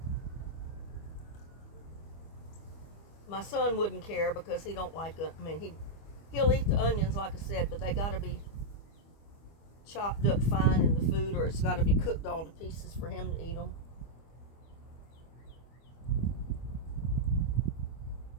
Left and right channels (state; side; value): late; right; 25 ms